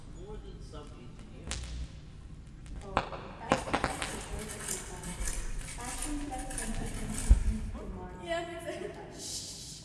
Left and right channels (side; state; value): both; identical; correlation 1.00